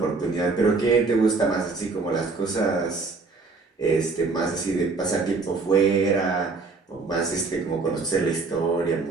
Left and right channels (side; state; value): left; quieter; 4.0 dB